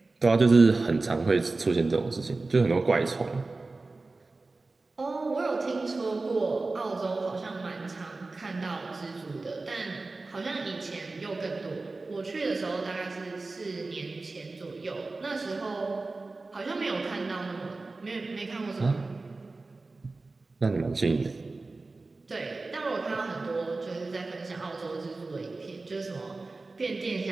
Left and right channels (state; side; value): quieter; left; 3.5 dB